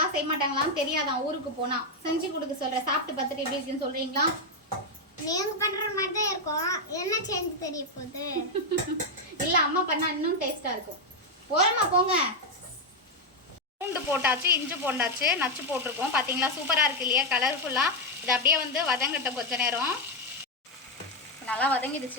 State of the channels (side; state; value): both; normal; correlation 0.04